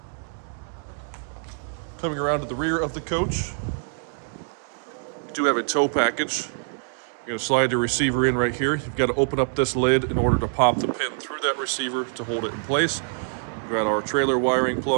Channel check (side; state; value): left; silent; 59 dB below the other